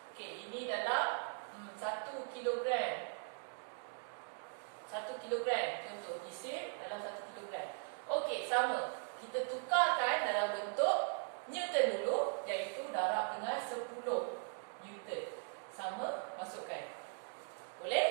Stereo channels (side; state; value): left; silent; 51 dB below the other